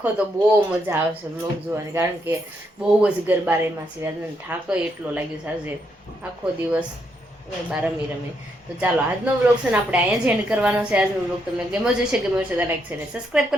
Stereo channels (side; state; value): both; normal; correlation 0.77